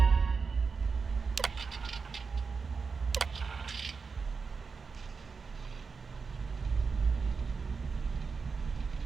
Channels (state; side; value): quieter; left; 5.0 dB